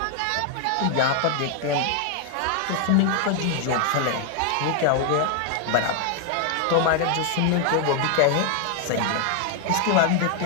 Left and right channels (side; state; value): both; different; correlation 0.00